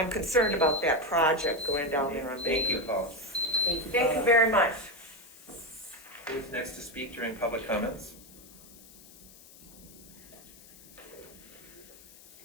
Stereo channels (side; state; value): left; noise; hiss, 21 dB below the sound